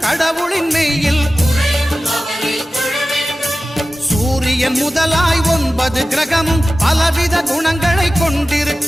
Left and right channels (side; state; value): both; normal; correlation 0.95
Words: கடவுளின் மெய்யில் சூரியன் முதலாய் 9 கிரகமும் பலவித குணங்களை